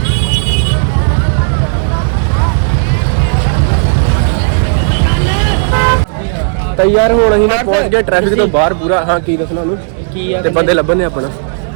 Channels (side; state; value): left; silent; digital silence